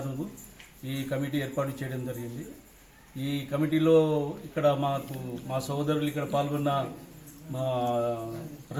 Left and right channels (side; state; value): both; identical; correlation 1.00